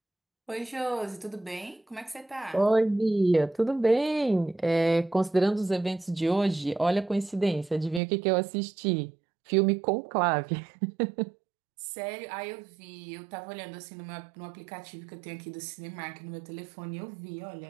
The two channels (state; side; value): drops out; left; at 8.0 s